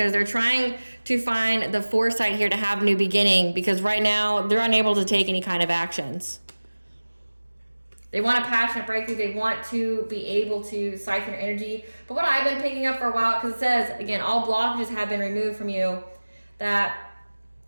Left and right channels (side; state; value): both; inverted; correlation -1.00